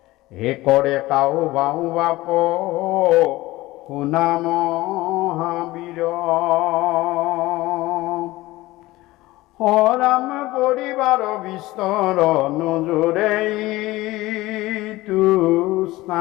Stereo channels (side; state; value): right; quieter; 18.7 dB